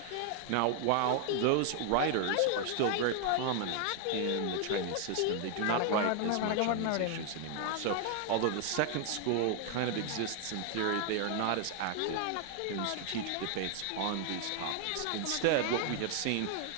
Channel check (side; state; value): both; different; correlation 0.00